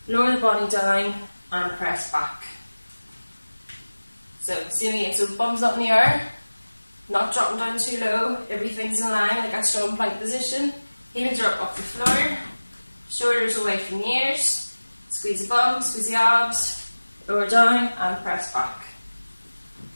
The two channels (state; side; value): inverted; both; correlation -1.00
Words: lower the body down, and press back. So same again, so bum's up in the air, not dropping down too low, everything's in line, like a strong plank position. Heels are up off the floor, shoulders away from the ears, squeeze the bum, squeeze the abs, lower down, and press back.